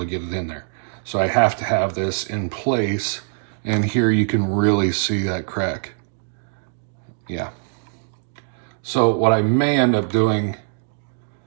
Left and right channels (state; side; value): silent; left; digital silence